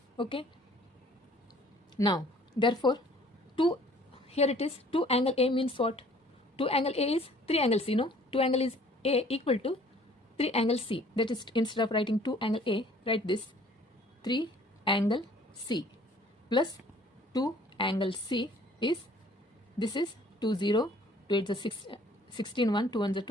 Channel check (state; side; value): normal; both; correlation 0.55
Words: Okay. Now, therefore, 2, here it is 2 angle A means what? 2 angle A is 3 angle C. No, 2 angle is A equal to 3 angle C. That is, instead of writing 2 angle A, write this 3 angle C plus 2 angle C is, this is 2 0, 2 8 is 6, 16 1, 2 1 is 2,